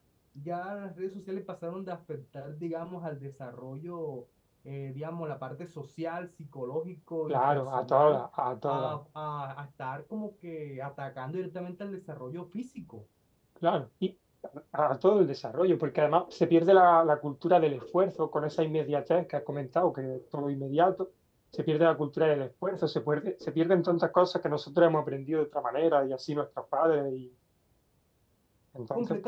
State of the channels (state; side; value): identical; both; correlation 1.00